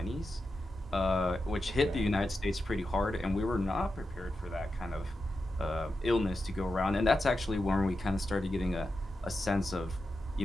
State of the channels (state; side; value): normal; both; correlation 0.89